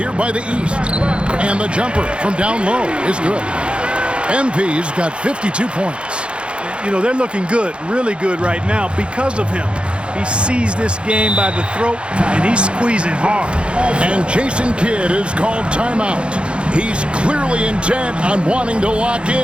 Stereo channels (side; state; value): left; late; 0.057 ms